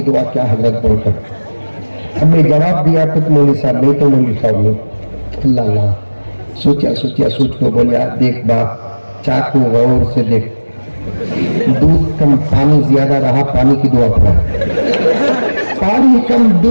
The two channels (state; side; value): inverted; both; correlation -1.00